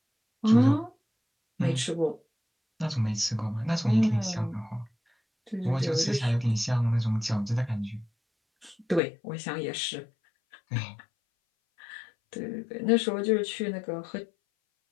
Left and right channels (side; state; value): right; drops out; at 9.0 s